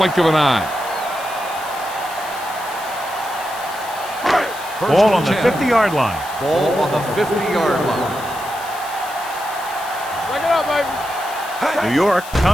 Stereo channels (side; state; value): left; noise; hiss, 15 dB below the sound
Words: of an eye. Ball on the 50-yard line. Ball on the 50-yard line. Break it up, baby. New York